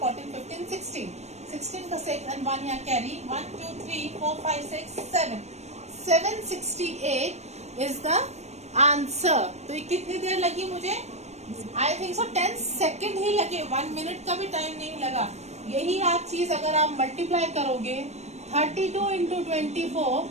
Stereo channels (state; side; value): late; left; 0.32 ms